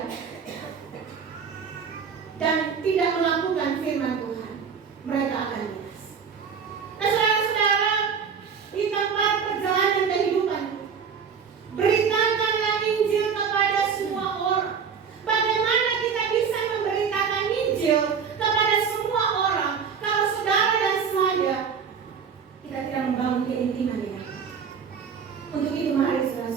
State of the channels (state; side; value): quieter; left; 6.5 dB